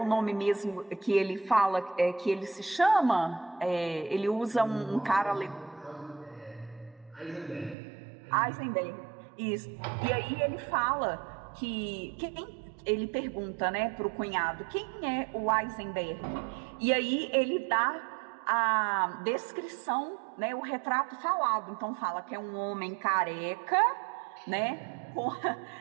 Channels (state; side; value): drops out; left; at 7.8 s